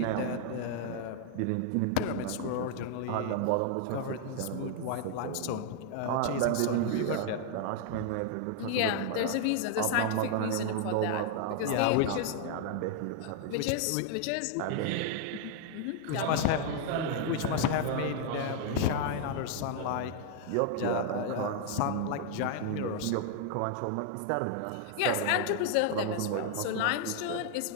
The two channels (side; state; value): both; different; correlation 0.00